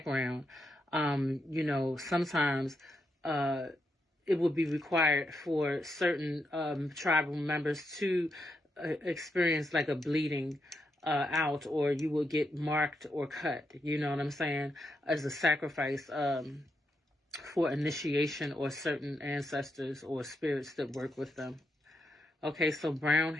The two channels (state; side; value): normal; both; correlation 0.82